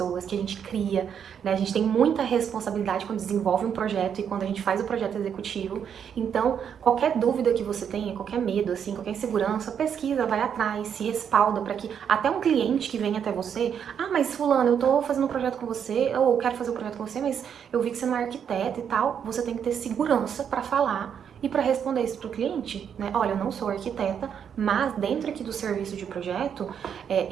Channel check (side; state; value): left; quieter; 8.0 dB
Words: que a gente cria, né? A gente tem muita responsabilidade quando desenvolve um projeto e quando a gente faz o projeto executivo. Então, qualquer dúvida que você tenha, qualquer medo, assim, qualquer insegurança, pesquisa, vai atrás, se respalda para que até um cliente que vem até você, mas fulano, eu tô fazendo um projeto com você, ou eu quero fazer um projeto com você, mas eu vi que você não é arquiteto e tal, você tem que ter segurança para falar e para responder isso para o cliente, né? Olha, eu não sou arquiteta, mas dentro aqui do serviço de projeto,